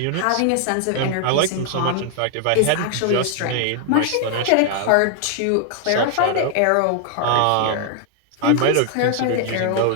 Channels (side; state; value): both; different; correlation 0.00